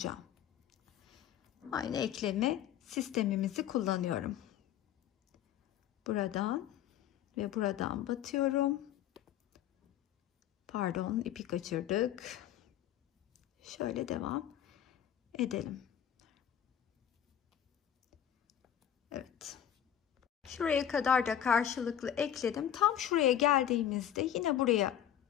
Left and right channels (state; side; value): quieter; right; 10.3 dB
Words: Aynı ekleme sistemimizi kullanıyorum. Buradan ve buradan batıyorum. Pardon, ipi kaçırdık. Şöyle devam edelim. Evet. Şuraya kadar da karşılıklı ekledim. Tam şuraya geldiğimizde yine buraya